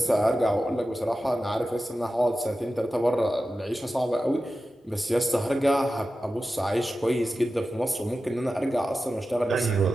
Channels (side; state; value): both; normal; correlation 0.93